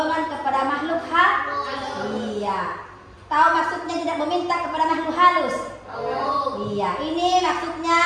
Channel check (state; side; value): identical; both; correlation 1.00